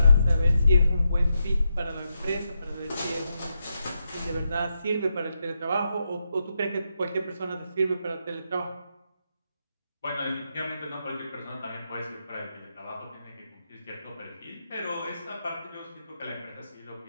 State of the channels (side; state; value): both; inverted; correlation -0.84